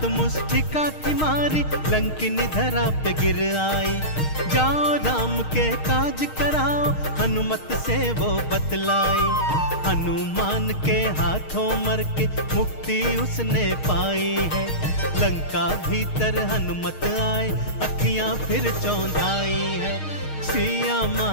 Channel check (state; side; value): late; right; 6.5 ms